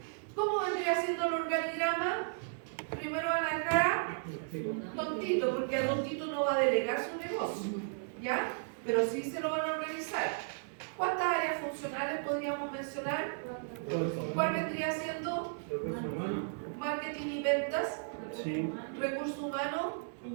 ¿Cómo vendría siendo el organigrama? Primero van a dejar a Tontito, porque a Tontito no va a delegar su negocio, ¿ya? Pero sí se lo van a organizar. ¿Cuántas áreas funcionales podríamos mencionar? ¿Cuál vendría siendo? Marketing y ventas, Sí. recursos humanos,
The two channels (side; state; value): left; silent; digital silence